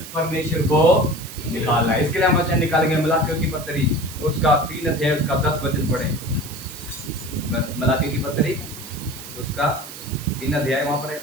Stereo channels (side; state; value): right; noise; hiss, 13 dB below the sound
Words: परमेश्वर को निकालना है। इसके लिए हम वचन निकालेंगे मलाकियों की पत्री, उसका 3 अध्याय, उसका 10 वचन पढ़े। मलाकियों की पत्री, उसका 3 अध्याय, वहां पर